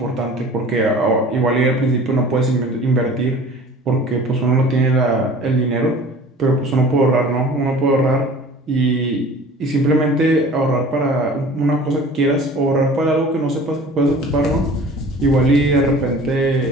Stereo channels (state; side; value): normal; both; correlation 0.44